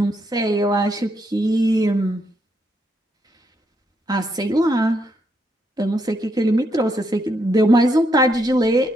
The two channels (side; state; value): both; normal; correlation 0.77